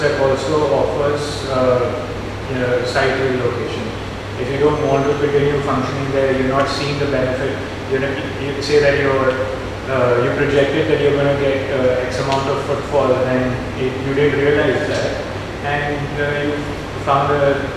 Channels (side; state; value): both; identical; correlation 1.00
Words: also offers site relocation. If you don't want to continue functioning there, you're not seeing the benefit. You say that you projected that you're going to get X amount of footfall, and you didn't realize that, and you found